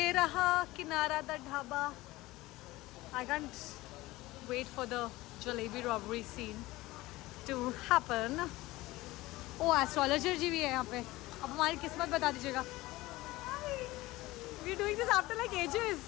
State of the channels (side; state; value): right; quieter; 19.0 dB